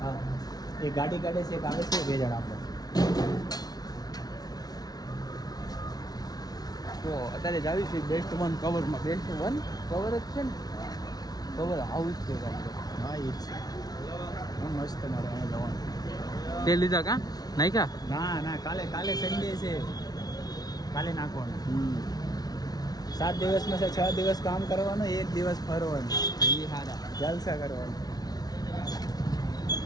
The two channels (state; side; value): late; right; 0.19 ms